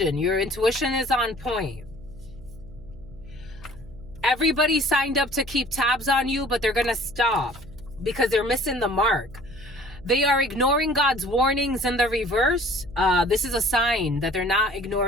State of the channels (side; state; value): right; noise; hum, 19 dB below the sound